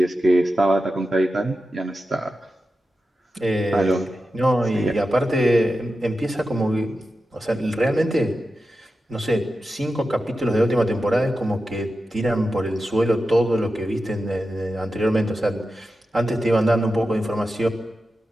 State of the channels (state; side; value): normal; both; correlation 0.91